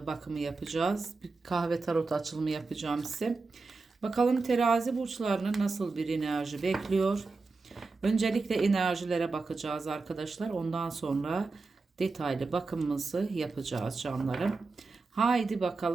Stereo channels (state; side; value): quieter; left; 3.9 dB